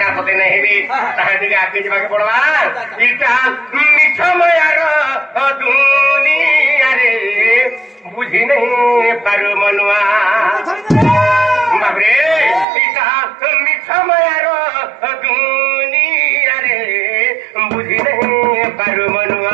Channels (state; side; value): drops out; left; at 12.7 s